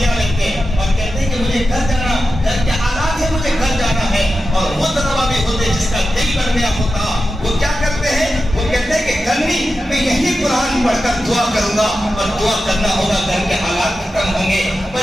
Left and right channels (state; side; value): normal; both; correlation 0.91